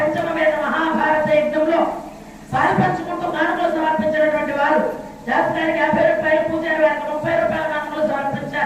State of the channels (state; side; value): identical; both; correlation 1.00